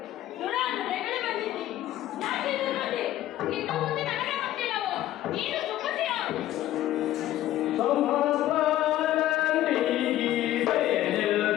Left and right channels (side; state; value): right; quieter; 13.7 dB